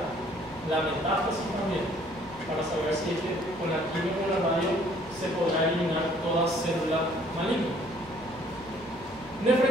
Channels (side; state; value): right; noise; hum, 23 dB below the sound